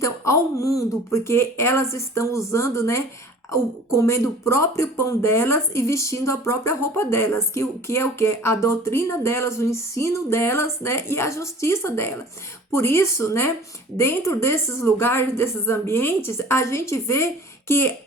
ao mundo, porque elas estão usando, né? Comendo o próprio pão delas e vestindo a própria roupa delas, que é o que? A doutrina delas, o ensino delas, né? E a justiça delas. Por isso, né? Dentro desses lugares, desses ambientes, a gente vê que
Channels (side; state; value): both; normal; correlation 0.45